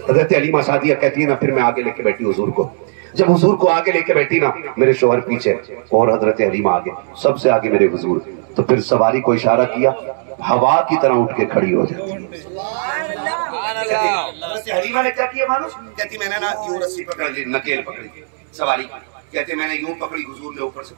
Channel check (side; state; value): left; silent; digital silence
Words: हलीमा सादिया कहती है ना, फिर मैं आगे लेके बैठी हुजूर को। जब हुजूर को आगे लेके बैठी ना, मेरे शोहर पीछे और हजरत हलीमा आगे, सबसे आगे मेरे हुजूर। तो फिर सवारी को इशारा किया, हवा की तरह उठ के खड़ी हो जाती। हलीमा ने क्या किया मानो? कहती मैंने ना यूं रस्सी पकड़ ली, नकेल पकड़ी सवारी। कहते मैंने यूं पकड़ी, हुजूर ने ऊपर से